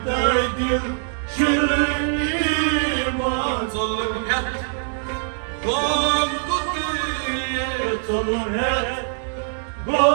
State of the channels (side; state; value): left; silent; digital silence